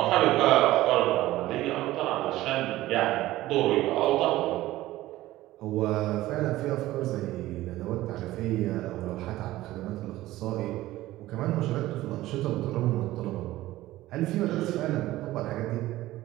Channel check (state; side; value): quieter; left; 16.3 dB